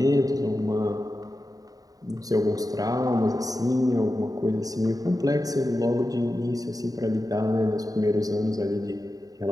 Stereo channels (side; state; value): left; late; 0.18 ms